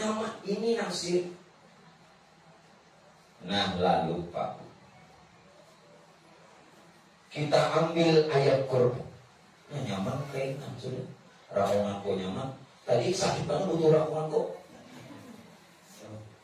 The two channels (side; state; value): both; identical; correlation 1.00